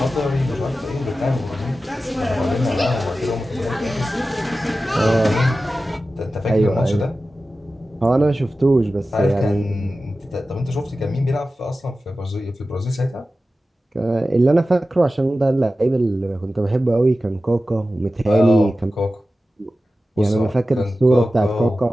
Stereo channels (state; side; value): normal; both; correlation 0.94